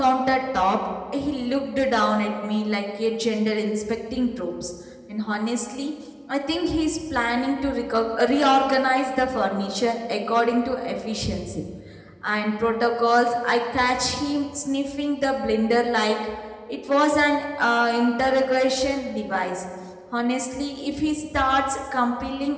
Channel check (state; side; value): identical; both; correlation 1.00